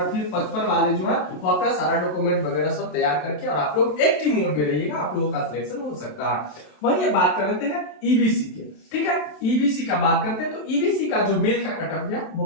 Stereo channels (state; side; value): late; right; 27 ms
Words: फिर 55 वाले जो है वो अपना सारा डॉक्यूमेंट वगैरह सब तैयार करके और आप लोग एक्टिव मोड में रहिएगा, आप लोगों का सिलेक्शन हो सकता है। वहीं ये बात कर लेते हैं ईबीसी के। ठीक है, ईबीसी का बात करते हैं तो ईबीसी का जो मेल का कटअप गया वो